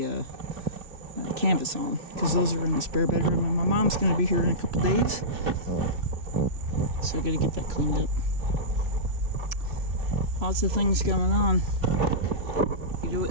canvas on, because those are in the spare bedroom and my mom's going to be here in a couple days, so I got to get that cleaned up. Lots of things going on. You know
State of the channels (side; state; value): left; late; 2.9 ms